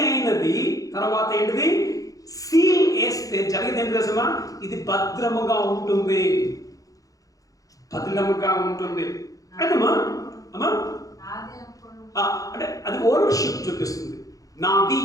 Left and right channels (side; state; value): right; late; 0.17 ms